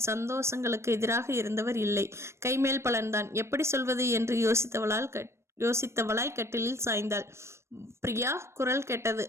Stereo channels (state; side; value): late; left; 0.13 ms